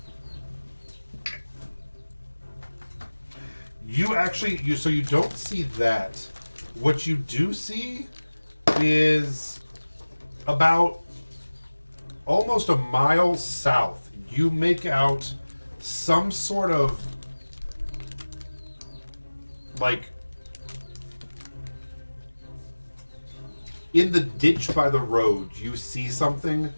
So you don't see that. What you do see is about almost a mile south. You make out some sort of like in the ditch by the road, you see something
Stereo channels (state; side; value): inverted; both; correlation -1.00